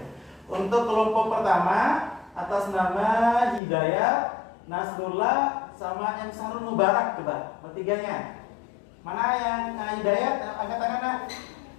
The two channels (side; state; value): right; drops out; at 3.6 s